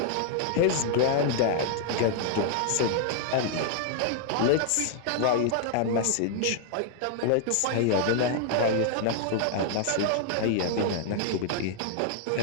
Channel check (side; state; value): both; different; correlation 0.00